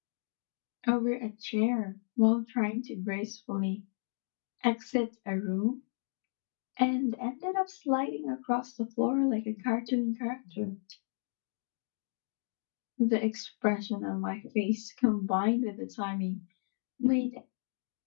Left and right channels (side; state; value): right; silent; digital silence